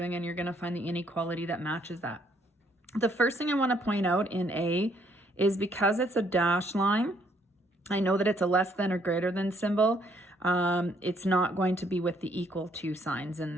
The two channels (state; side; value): normal; both; correlation 0.68